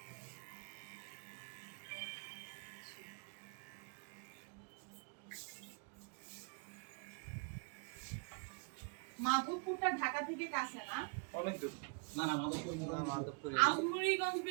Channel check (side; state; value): left; quieter; 37.5 dB